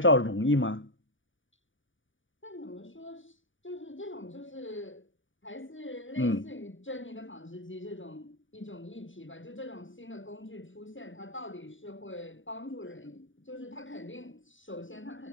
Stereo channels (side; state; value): right; late; 0.57 ms